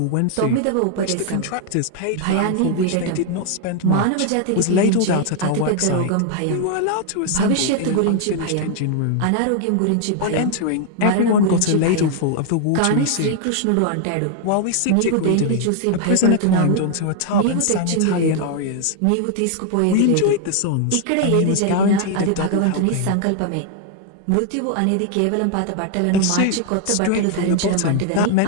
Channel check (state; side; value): different; both; correlation 0.00